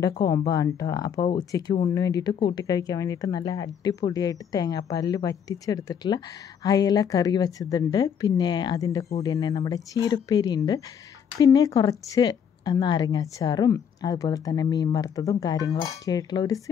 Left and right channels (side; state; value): right; quieter; 7.9 dB